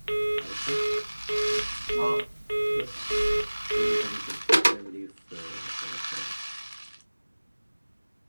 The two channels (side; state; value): both; inverted; correlation -1.00